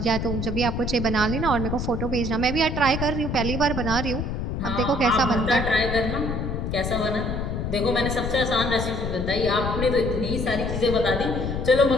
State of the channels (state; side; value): noise; left; rumble, 3 dB below the sound